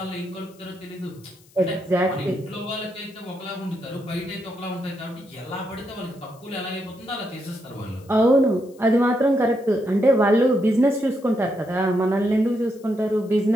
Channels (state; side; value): noise; left; hiss, 28 dB below the sound